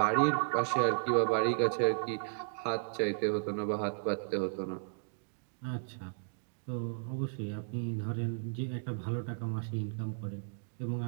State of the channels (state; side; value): silent; left; digital silence